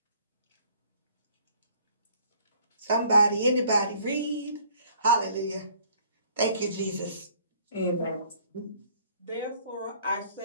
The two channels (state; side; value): inverted; both; correlation -0.58